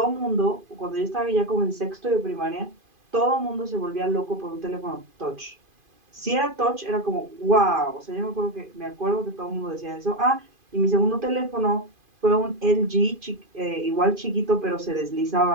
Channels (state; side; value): late; left; 2.5 ms